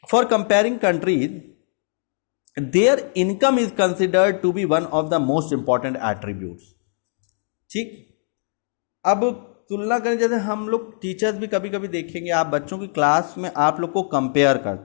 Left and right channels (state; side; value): silent; right; digital silence